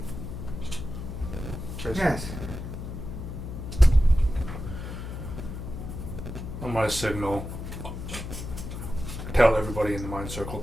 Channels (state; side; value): noise; left; hum, 7 dB below the sound